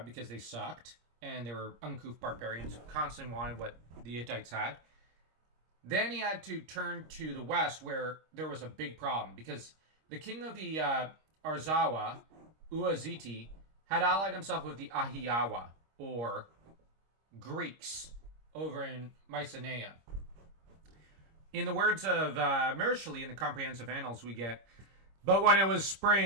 because they sucked and they were uncouth barbarians who constantly wanted what the Hittites had. Then he had to turn to the west where there was a big problem because the king of the Arzawa, Uaziti, had allied himself with the Ahiyawa, or Greeks, over in Mycenae. In the words of Mursili in the Comprehensive Annals, we get, "But when it was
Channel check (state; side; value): late; left; 26 ms